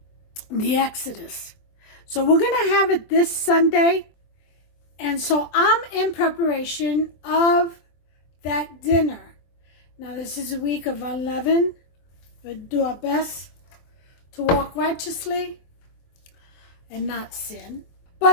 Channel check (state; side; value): late; right; 24 ms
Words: the Exodus. So we're going to have it this Sunday. And so I'm in preparation of that dinner. Now this is a week of unleavened. We'll do our best to walk righteously and not sin.